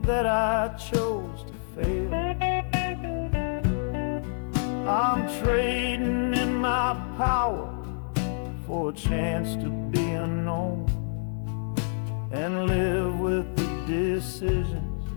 that I chose to fail. I'm trading in my power for a chance to be unknown and live with the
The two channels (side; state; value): right; silent; digital silence